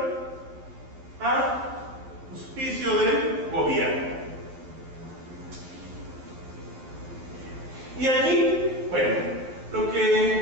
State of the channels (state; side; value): late; left; 11 ms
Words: a auspicio del gobierno. Y aquí, bueno, lo